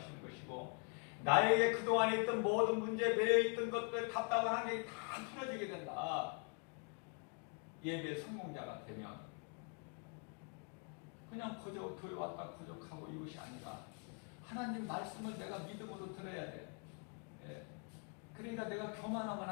것이고 나에게 그동안에 있던 모든 문제, 매여있던 것들, 답답한 환경이 다 풀어지게 된다. 예배 성공자가 되면 그냥 그저 교회 왔다 부족하고 이것이 아니라 하나님 말씀을 내가 믿음으로 들어야 돼. 그러니까 내가 교만하면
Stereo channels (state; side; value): quieter; right; 37.8 dB